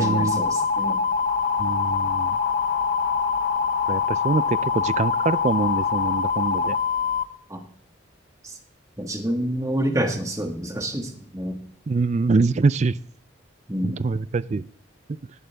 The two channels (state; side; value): normal; both; correlation 0.11